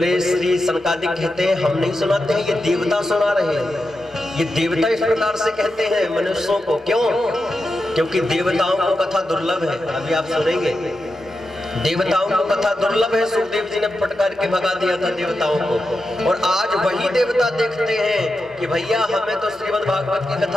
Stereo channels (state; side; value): normal; both; correlation 0.89